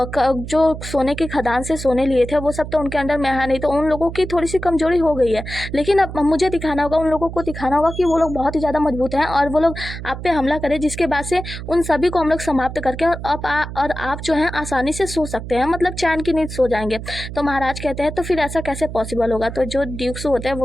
सोने की खदान से सोने लिए थे वो सब तो उनके अंदर में है नहीं, तो उन लोगों की थोड़ी सी कमजोरी हो गई है। लेकिन अब मुझे दिखाना होगा, उन लोगों को दिखाना होगा कि वो लोग बहुत ही ज्यादा मजबूत हैं और वो लोग आप पे हमला करें, जिसके बाद से उन सभी को हम लोग समाप्त करके और आप जो है आसानी से सो सकते हैं, मतलब चैन की नींद सो जाएंगे। तो महाराज कहते हैं तो फिर ऐसा कैसे पॉसिबल होगा? तो जो ड्यूक्स होते हैं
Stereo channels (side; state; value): right; noise; hum, 9 dB below the sound